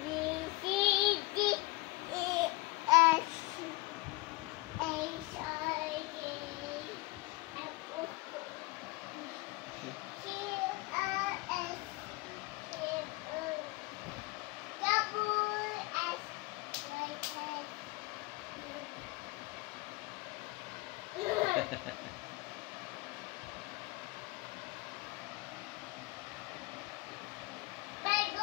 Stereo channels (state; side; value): quieter; right; 21.9 dB